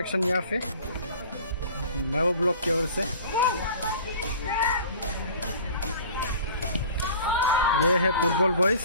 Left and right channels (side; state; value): both; inverted; correlation -0.44